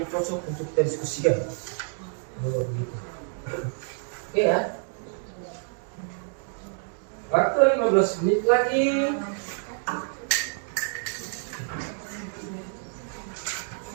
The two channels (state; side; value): silent; left; 60 dB below the other